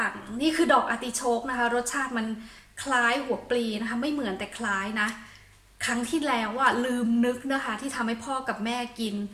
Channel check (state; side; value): identical; both; correlation 1.00